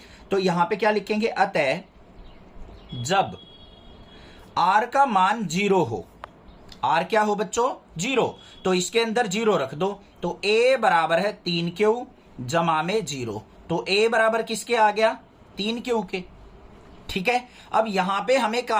तो यहाँ पे क्या लिखेंगे, अतः जब r का मान 0 हो, r क्या हो बच्चों, 0, तो इसके अंदर 0 रख दो। तो a बराबर है 3q जमा में 0। तो a बराबर किसके आ गया, 3q के। ठीक है। अब यहां पे हमें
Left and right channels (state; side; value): identical; both; correlation 1.00